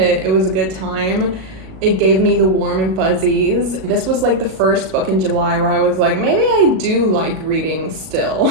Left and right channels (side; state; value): left; late; 37 ms